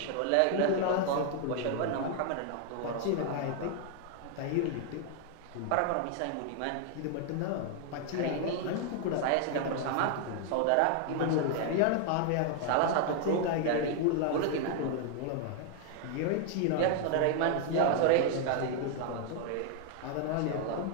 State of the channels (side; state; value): both; different; correlation 0.00